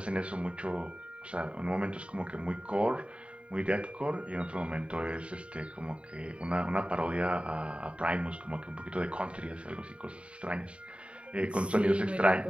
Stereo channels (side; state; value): left; late; 0.060 ms